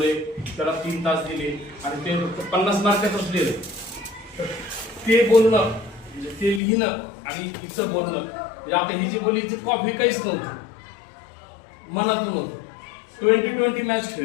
त्याला 3 तास दिले आणि ते 50 मार्कातच लिहिलंय. ते बोलणं म्हणजे ते लिहिणं आणि तिचं बोलणं म्हणजे आता ही जी बोलली ती कॉफी काहीच नव्हती, मनातून होतं. 20-20 मॅच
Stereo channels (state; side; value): drops out; right; at 6.6 s